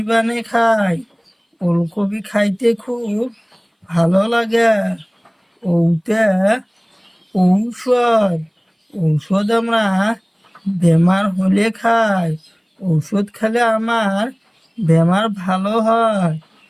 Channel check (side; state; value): both; identical; correlation 1.00